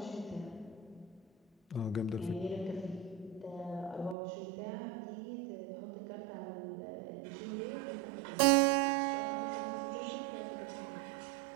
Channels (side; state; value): left; drops out; at 4.2 s